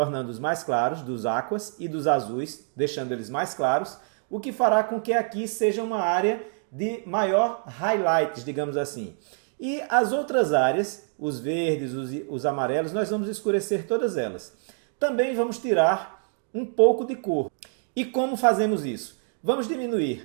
mais claros, dos aquas e dos azuis, deixando eles mais claros, o que fará com que aqui seja uma área de maior highlights, digamos assim. E as outras áreas, os verdes, os amarelos, nós vamos escurecer todas elas. Também vamos tirar um pouco de cor. E como fazemos isso? Vamos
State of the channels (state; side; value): silent; left; 56 dB below the other